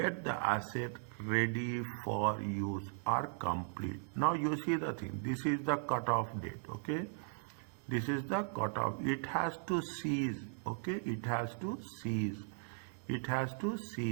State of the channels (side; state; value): left; silent; 53 dB below the other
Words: the asset ready for use or complete. Now you see the thing, this is the cutoff date, okay? This is the cutoff. It has to cease, okay? It has to cease. It has to